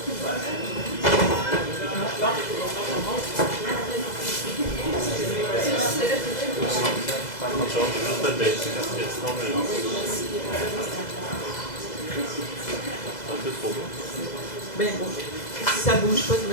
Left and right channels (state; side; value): late; right; 2.0 ms